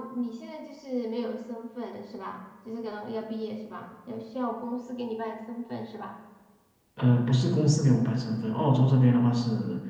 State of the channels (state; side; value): identical; both; correlation 1.00